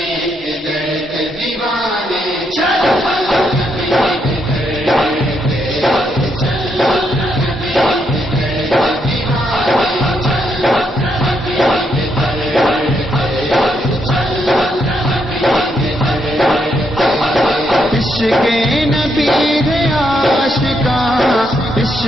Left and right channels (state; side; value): normal; both; correlation 0.78